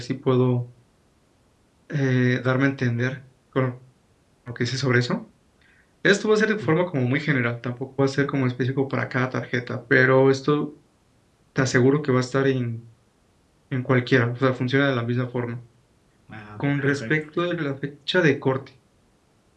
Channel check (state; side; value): identical; both; correlation 1.00